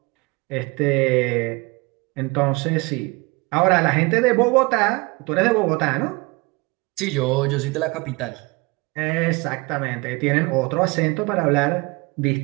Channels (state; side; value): quieter; left; 26.0 dB